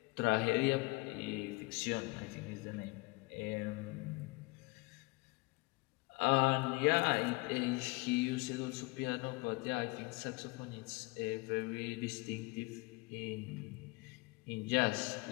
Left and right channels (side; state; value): right; quieter; 25.9 dB